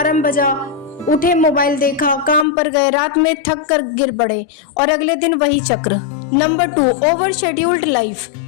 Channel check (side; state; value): right; drops out; at 2.5 s